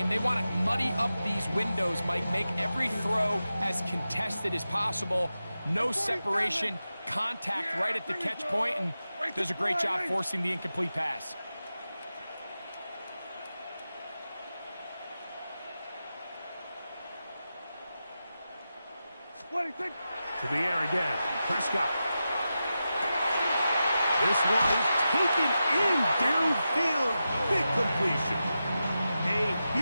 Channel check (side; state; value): both; inverted; correlation -0.91